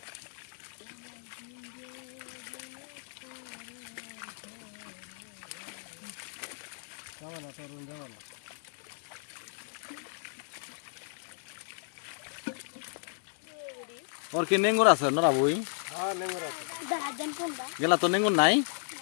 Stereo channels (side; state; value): right; silent; digital silence